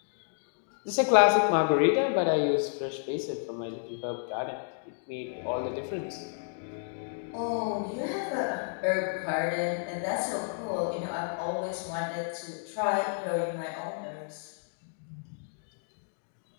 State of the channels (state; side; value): silent; right; digital silence